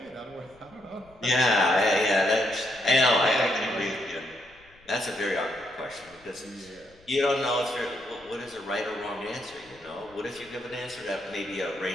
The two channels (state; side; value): noise; left; rumble, 28 dB below the sound